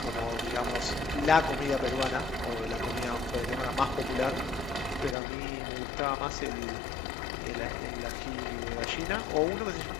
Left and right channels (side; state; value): right; drops out; at 5.2 s